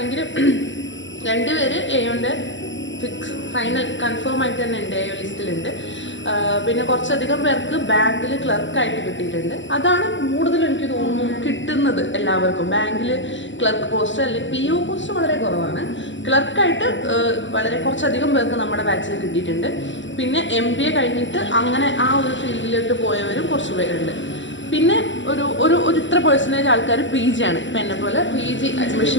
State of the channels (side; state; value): right; late; 0.54 ms